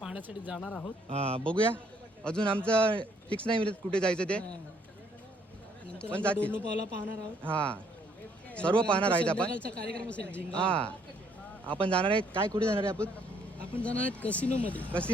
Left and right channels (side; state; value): both; normal; correlation 0.66